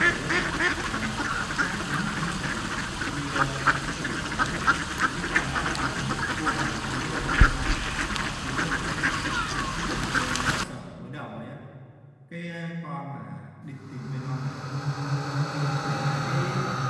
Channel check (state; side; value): identical; both; correlation 1.00